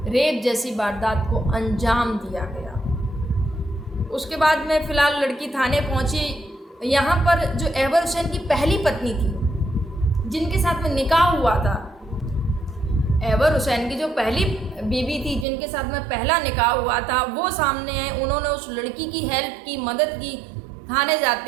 रेप जैसी वारदात को अंजाम दिया गया। उसके बाद में फ़िलहाल लड़की थाने पहुंची। यहाँ पर जो अहवर हुसैन की पहली पत्नी थी, जिनके साथ में निकाह हुआ था, अहवर हुसैन की जो पहली बीवी थी, जिनके साथ में पहला निकाह हुआ था, वो सामने है। उन्होंने उस लड़की की हेल्प की, मदद की। थाने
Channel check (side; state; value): left; drops out; at 15.5 s